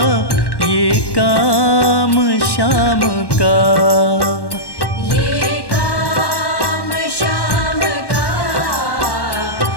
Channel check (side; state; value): right; late; 1.1 ms